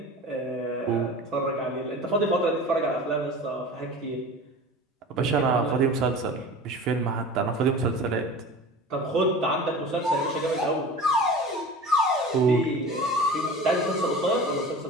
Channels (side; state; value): both; normal; correlation 0.36